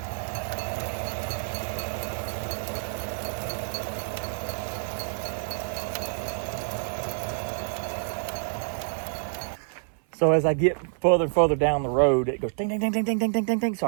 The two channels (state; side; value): silent; left; 59 dB below the other